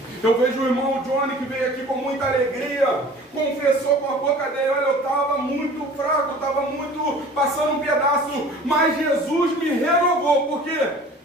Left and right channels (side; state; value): both; normal; correlation 0.45